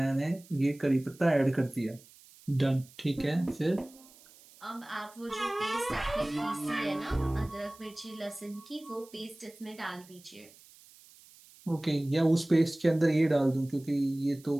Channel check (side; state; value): right; noise; hiss, 24 dB below the sound